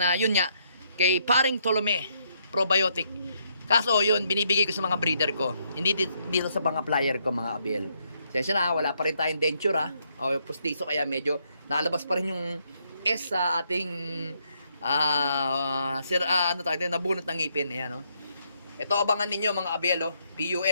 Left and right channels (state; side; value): inverted; both; correlation -0.74